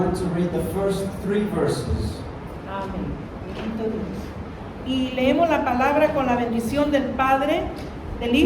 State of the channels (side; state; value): both; identical; correlation 1.00